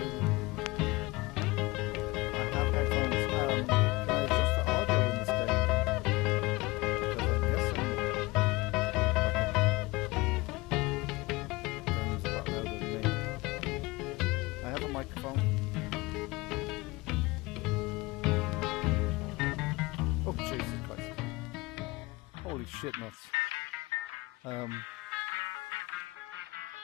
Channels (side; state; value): right; quieter; 22.6 dB